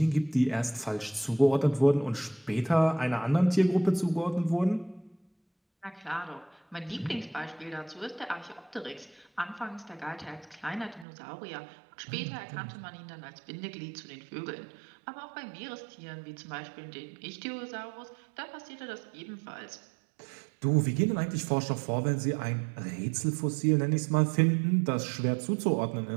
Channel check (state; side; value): drops out; left; at 11.1 s